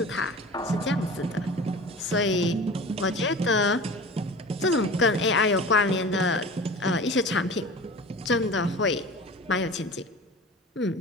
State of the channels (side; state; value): both; normal; correlation 0.37